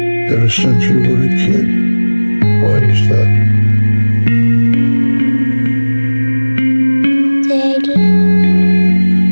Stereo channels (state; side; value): inverted; both; correlation -1.00